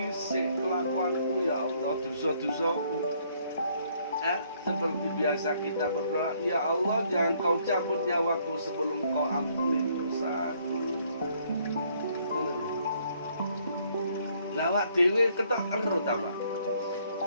kelakuanku ya Allah, dosa-dosaku. Seperti biasa kita berdoa, ya Allah, jangan kau cabut nyawaku sebelum kau ampuni dosaku. Lawak dewe ketok ero ta, Pak.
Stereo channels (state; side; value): inverted; both; correlation -0.66